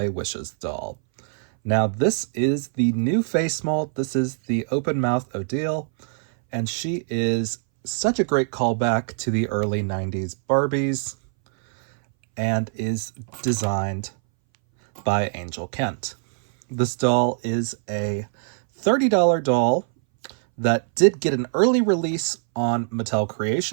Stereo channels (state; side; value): silent; left; 62 dB below the other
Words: Wishes doll. Now this is the new face mold. This is the open mouth Odile, and she is such a great callback to the early 90s Barbies and is designed by Angel Kent. This doll is a $30 doll that did get an early release on Mattel